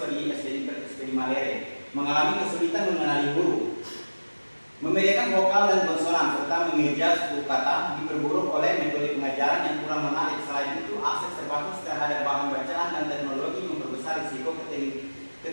di SD Malere, mengalami kesulitan mengenali huruf, membedakan vokal dan konsonan, serta mengeja suku kata, diperburuk oleh metode pengajaran yang kurang menarik. Selain itu, akses terbatas terhadap bahan bacaan dan teknologi memperbesar risiko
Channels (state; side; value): inverted; both; correlation -1.00